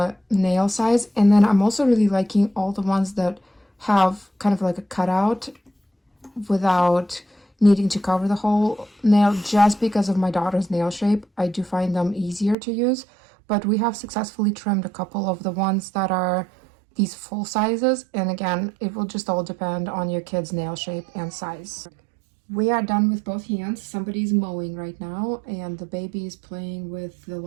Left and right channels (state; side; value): drops out; left; at 12.6 s